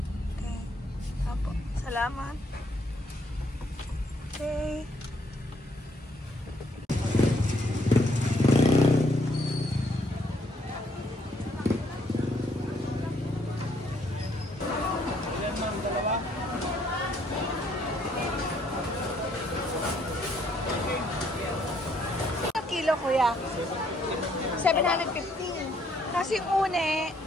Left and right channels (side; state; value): both; normal; correlation 0.69